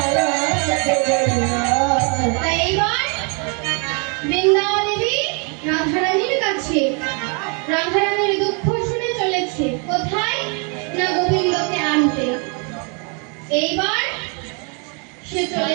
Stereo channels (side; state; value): left; quieter; 36.3 dB